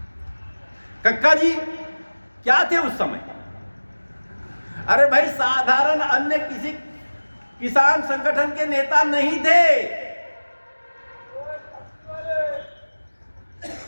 कक्का जी क्या थे उस समय? अरे भाई, साधारण अन्य किसी किसान संगठन के नेता नहीं थे।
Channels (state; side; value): inverted; both; correlation -1.00